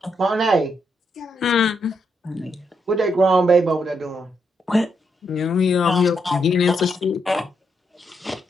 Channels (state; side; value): normal; both; correlation 0.79